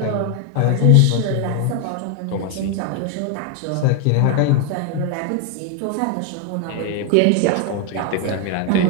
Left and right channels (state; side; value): different; both; correlation 0.01